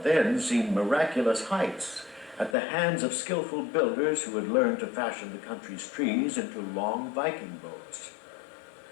then seemed miraculous heights at the hands of skillful builders who had learned to fashion the country's trees into long Viking boats.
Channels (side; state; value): right; drops out; at 2.6 s